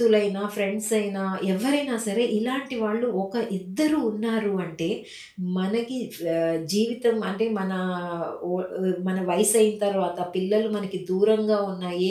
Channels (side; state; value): both; identical; correlation 1.00